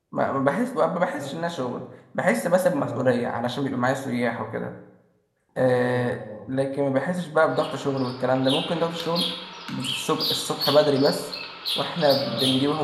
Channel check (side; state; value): both; identical; correlation 1.00